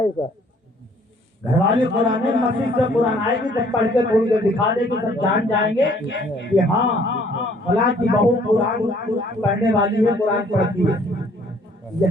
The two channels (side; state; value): both; normal; correlation 0.60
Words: گھر والی قرآن مسجد سے قرآن آئے گی جب پڑھ کے تھوڑی دیر دکھا دے گی, سب جان جائیں گے کہ ہاں فلاں کی بہو قرآن پڑھنے والی ہے, قرآن پڑھتی ہے.